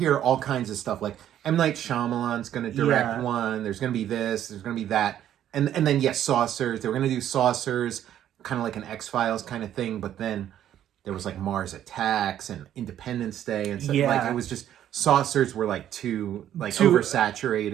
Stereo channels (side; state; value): left; quieter; 11.1 dB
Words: all kinds of stuff like M. Night Shyamalan's going to direct one, there's going to be this, there's going to be that, and then yes, Saucers, they were going to do Saucers, kind of like an X-Files kind of thing, but then there was like Mars Attacks and Independence Day and stuff. Like, it was just, Saucers were like too